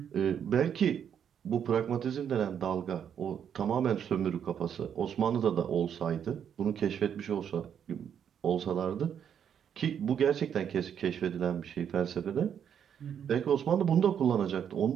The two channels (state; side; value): quieter; left; 8.4 dB